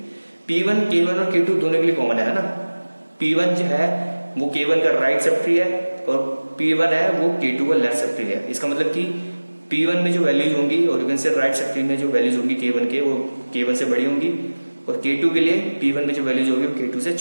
P1 K1 और K2 दोनों के लिए कॉमन है ना। P1 जो है वो K1 का राइट सब ट्री है और P1 है वो K2 का लेफ्ट सब ट्री है। इसका मतलब कि P1 में जो वैल्यूज होंगी और यू कैन से राइट सब ट्री में जो वैल्यूज होंगी K1 के, वो K1 से बड़ी होंगी और K2 के लिए P1 में जो वैल्यूज होगी वो K2 से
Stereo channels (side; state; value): both; inverted; correlation -1.00